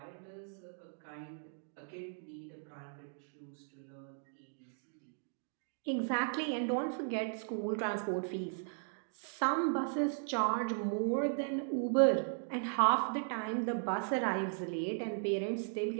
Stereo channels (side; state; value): left; silent; digital silence